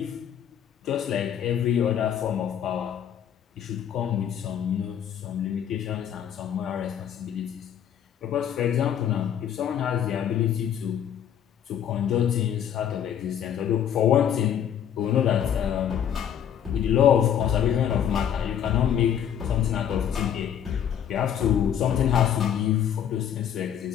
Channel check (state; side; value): quieter; right; 9.3 dB